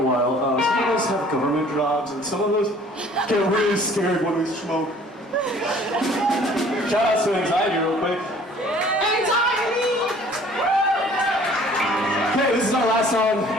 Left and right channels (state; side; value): normal; both; correlation 0.53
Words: while. Some of us have government jobs, and some of us get really scared when we smoke. Shout out to anxiety real quick. Anxiety! Okay, this is our last song.